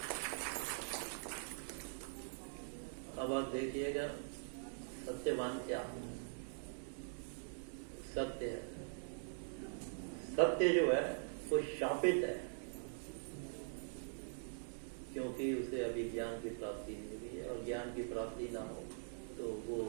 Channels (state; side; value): silent; left; digital silence